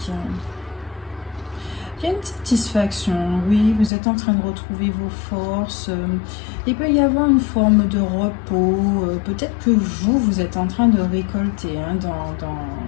il y a une satisfaction, oui, vous êtes en train de retrouver vos forces. Il peut y avoir une forme de repos. Peut-être que vous êtes en train de récolter hein,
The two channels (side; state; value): right; drops out; at 3.9 s